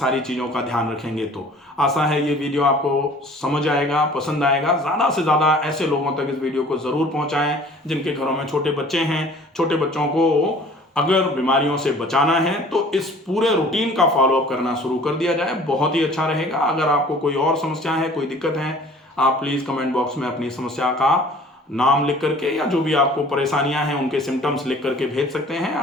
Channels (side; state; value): both; normal; correlation 0.49